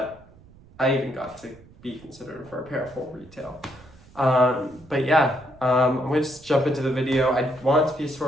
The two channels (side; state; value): right; noise; rumble, 24 dB below the sound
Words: I even got to be considered for a pair for retail. But yeah, I'm going to just jump into the video. I want it to be